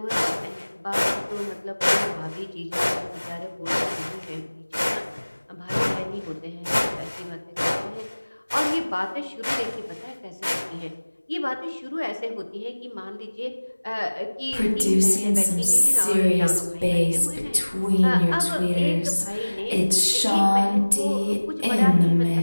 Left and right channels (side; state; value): both; inverted; correlation -1.00